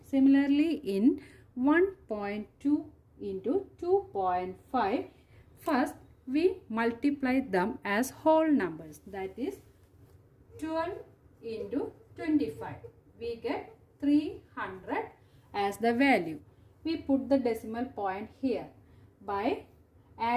Similarly, in 1.2 into 2.5, first we multiply them as whole numbers. That is 12 into 25. We get 300 as the value. We put the decimal point here by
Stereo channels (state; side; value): identical; both; correlation 1.00